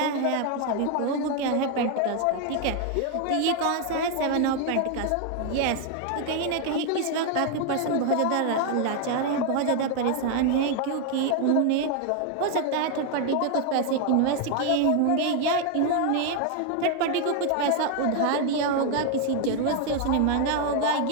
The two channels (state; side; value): different; both; correlation 0.00